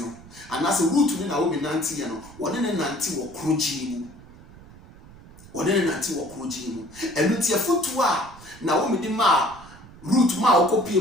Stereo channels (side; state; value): right; noise; rumble, 20 dB below the sound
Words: and as a root to Naomi Nantiano, one in a Nanti or Crujimu. One in a Nanti or Crujimu. And with your foot to Naomi de Ma. Root ma copy